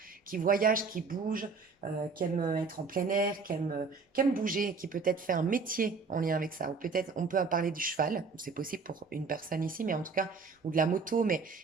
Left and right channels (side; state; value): left; quieter; 4.7 dB